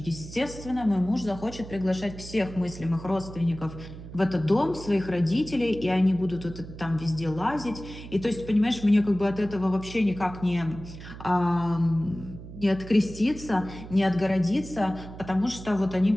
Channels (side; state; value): right; noise; hum, 13 dB below the sound